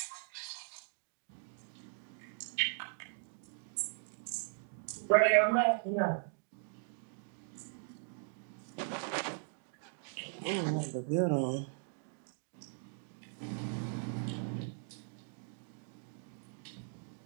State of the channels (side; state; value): left; silent; 52 dB below the other